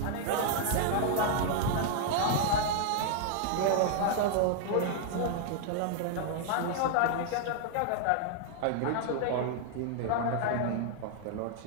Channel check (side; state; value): both; different; correlation -0.01